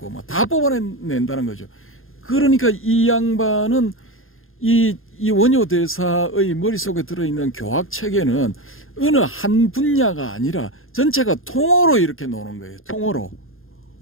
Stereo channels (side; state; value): right; late; 0.60 ms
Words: 뭐 다 뽑아낸다는 거죠. 그러니까 이 양반은 이 원효 대사의 머릿속에 들어있는 교학 체계는 어느 한 분야가 아니라 전체가 통으로 이렇게 노는 거예요. 통으로.